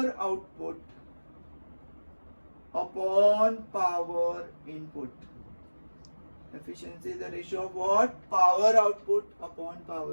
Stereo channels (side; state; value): both; inverted; correlation -1.00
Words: output upon power input. Efficiency is the ratio of what? Power output upon